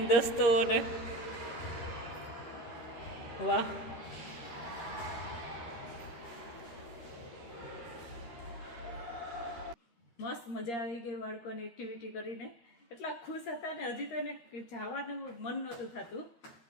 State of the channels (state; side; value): late; right; 13 ms